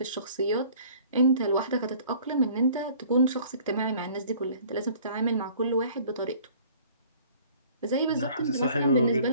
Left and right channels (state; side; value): inverted; both; correlation -0.52